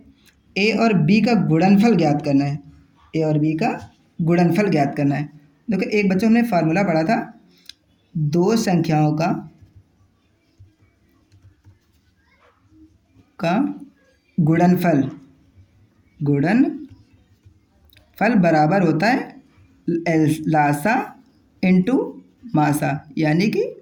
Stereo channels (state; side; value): identical; both; correlation 1.00